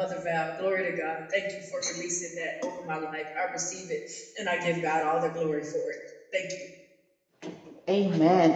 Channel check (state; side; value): identical; both; correlation 1.00